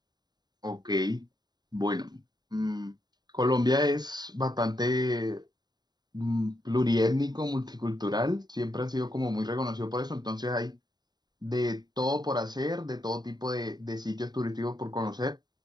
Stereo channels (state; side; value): late; left; 0.20 ms